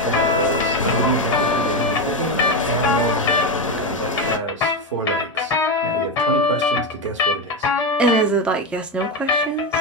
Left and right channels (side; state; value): both; normal; correlation 0.12